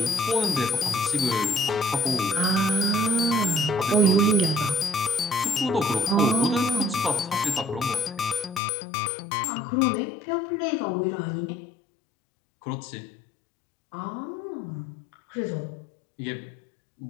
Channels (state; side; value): drops out; right; at 8.6 s